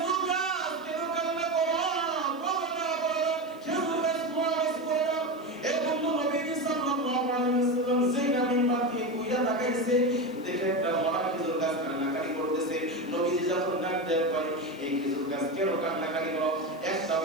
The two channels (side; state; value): right; noise; hiss, 28 dB below the sound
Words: গাছ কেন কান্না করো, বলো বলো খেজুর গাছ মরাস করো। এবং নবীজি সাল্লাল্লাহু আলাইহি ওয়াসাল্লাম যেটা মিম্বার থেকে কইরা তাকাইছে, দেখে একটা মরা খেজুর গাছ কান্নাকাটি করতেছে। নবীজি যখন ডাক দেয় কয় এই খেজুর গাছ কেন কান্নাকাটি করো, একটা